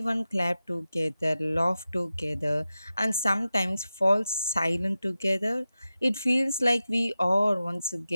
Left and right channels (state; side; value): inverted; both; correlation -0.93